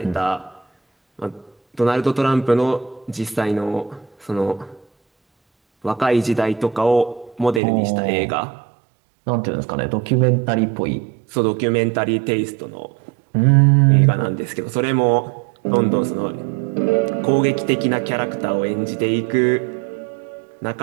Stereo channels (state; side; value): drops out; left; at 7.6 s